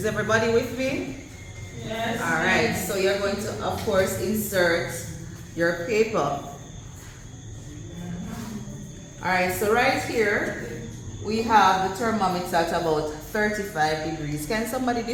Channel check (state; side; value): identical; both; correlation 1.00